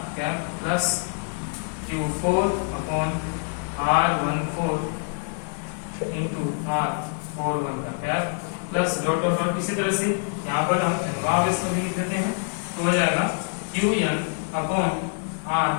क्या plus Q4 upon R14 into R41 का क्या प्लस डॉट डॉट डॉट, इसी तरह से यहाँ पर हम एनवा आवेश को भी लिख देते हैं, तो हो जाएगा Qn upon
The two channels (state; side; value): silent; right; 61 dB below the other